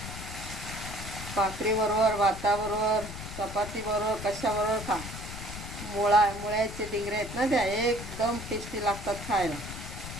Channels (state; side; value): noise; left; rumble, 9 dB below the sound